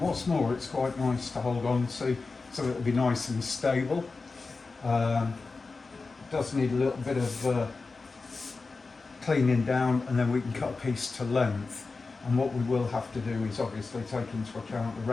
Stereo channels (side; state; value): right; quieter; 4.0 dB